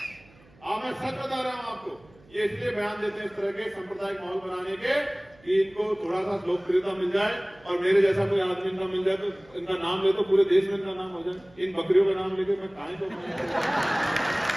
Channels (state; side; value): noise; right; hum, 28 dB below the sound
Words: मैं सच बता रहा हूं आपको, ये इसलिए बयान देते हैं इस तरह के सांप्रदायिक माहौल बनाने के कि इनको थोड़ा सा लोकप्रियता मिल जाए, और मेरे जैसा कोई आदमी इनका मिल जाए तो इनका नाम ले तो पूरे देश में इनका नाम हो जाए। इन बकरियों का नाम लेके मैं कहां तो